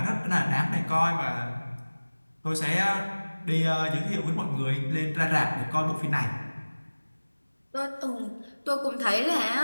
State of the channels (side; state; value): both; inverted; correlation -1.00